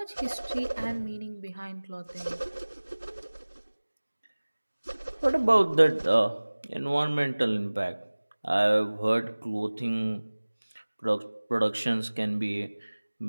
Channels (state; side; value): inverted; both; correlation -1.00